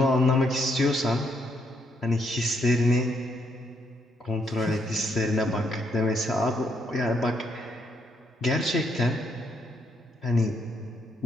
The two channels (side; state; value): both; normal; correlation 0.74